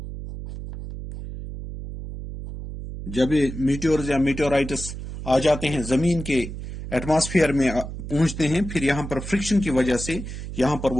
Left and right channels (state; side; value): noise; right; hum, 9 dB below the sound